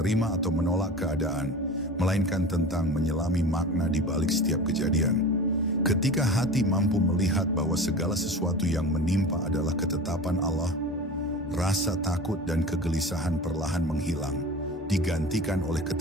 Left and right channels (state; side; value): normal; both; correlation 0.34